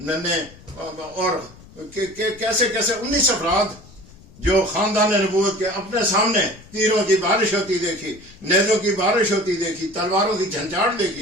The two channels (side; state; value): left; noise; rumble, 23 dB below the sound